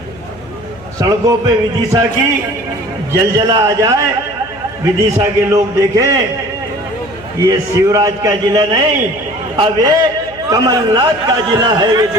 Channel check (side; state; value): left; noise; hum, 21 dB below the sound